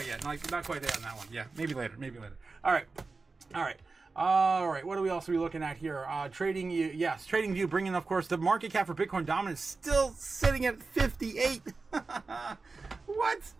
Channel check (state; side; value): quieter; left; 4.0 dB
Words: yet. Not quite there on that one. Yeah, maybe later. Maybe later. All right. All right. All right. What are we also be looking at here? Trading View. Yes, Trading View bringing, of course, the market cap for Bitcoin dominance still sitting at 58. What?